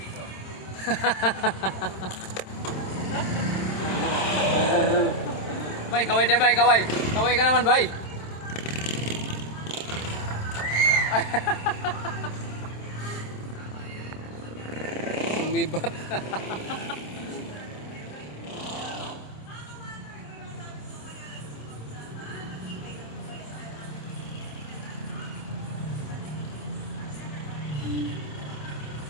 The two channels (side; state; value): right; late; 27 ms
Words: Bay, kaway dyan bay, kaway. Kaway ka naman bay. Umibat.